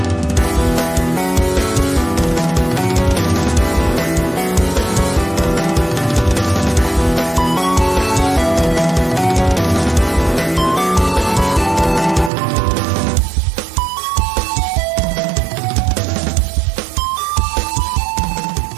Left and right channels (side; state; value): left; drops out; at 12.3 s